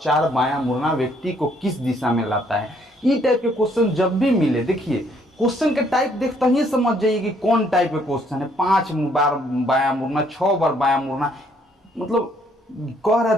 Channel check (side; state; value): both; normal; correlation 0.67